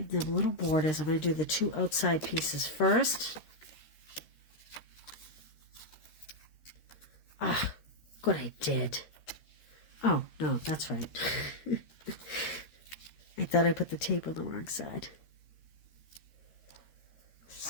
them little borders. I'm going to do the 2 outside pieces first. Ah, good, I did. Oh, no, that's right. I thought I put the tape on the wrong side.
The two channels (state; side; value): late; right; 13 ms